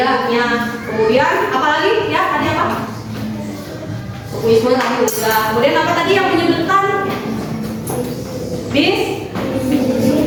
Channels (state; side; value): identical; both; correlation 1.00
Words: Kemudian apa lagi? Ya, tadi apa? Sukuisme tadi udah. Kemudian apa tadi yang menyebutkan?